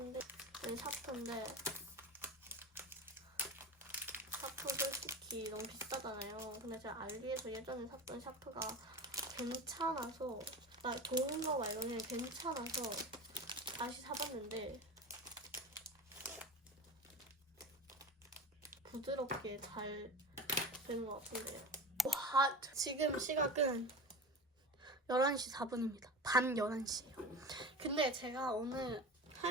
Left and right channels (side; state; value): both; normal; correlation 0.30